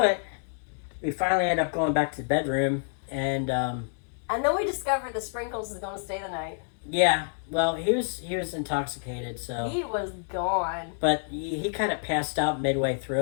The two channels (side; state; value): right; silent; digital silence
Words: it. We finally end up going back to the bedroom. And then we discovered the Sprinkles is going to stay the night. Yeah. Well, he was intoxicated, so. He was gone. But he kind of passed out midway